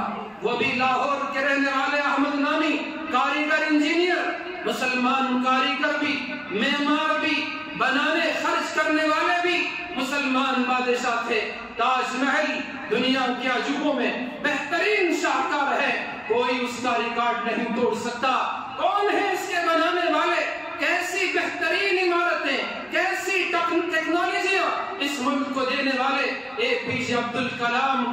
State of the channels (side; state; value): both; identical; correlation 1.00